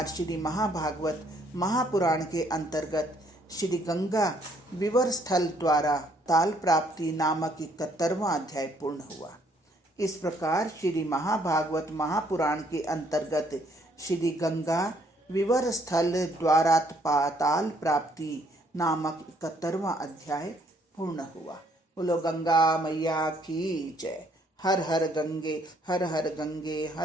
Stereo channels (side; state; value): both; normal; correlation 0.66